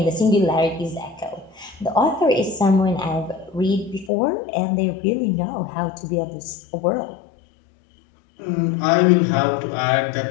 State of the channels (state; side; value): drops out; right; at 4.1 s